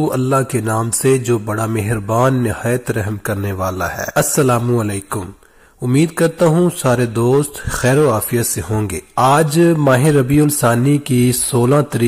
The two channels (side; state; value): both; identical; correlation 1.00